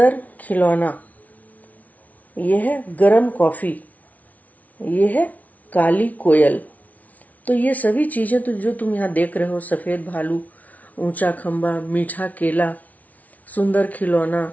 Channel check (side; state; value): right; late; 0.072 ms